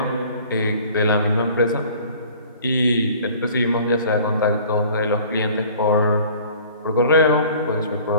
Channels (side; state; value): both; inverted; correlation -0.49